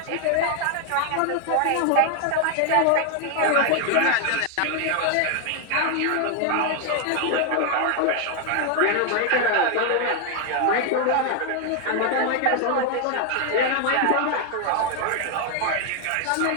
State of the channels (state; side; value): different; both; correlation 0.01